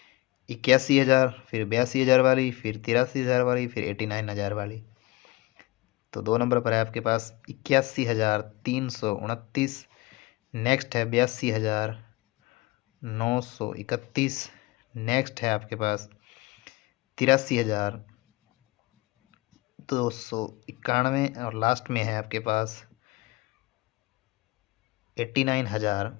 81,000। फिर 82,000 वाली। फिर 83,000 वाली। फिर 89,000 वाली। तो 2 नंबर पर है आपके पास 81,329। नेक्स्ट है 82,931। नेक्स्ट है आपके पास 83,291। और लास्ट में है आपके पास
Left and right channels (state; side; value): quieter; right; 21.2 dB